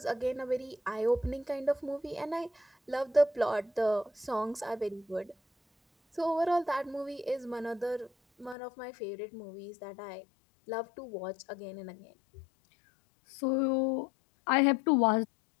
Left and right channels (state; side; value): drops out; right; at 8.6 s